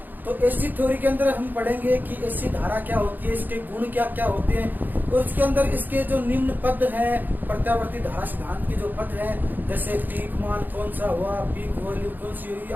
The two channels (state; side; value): late; left; 0.087 ms